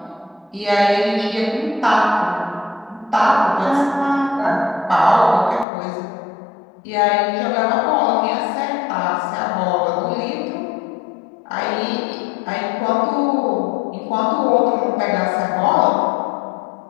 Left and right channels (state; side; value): drops out; right; at 5.7 s